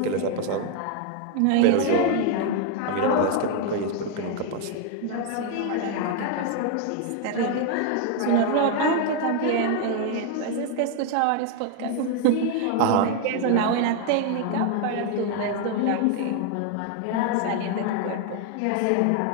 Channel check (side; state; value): both; different; correlation 0.00